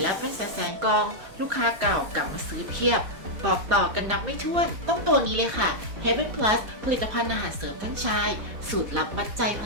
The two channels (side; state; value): left; late; 4.2 ms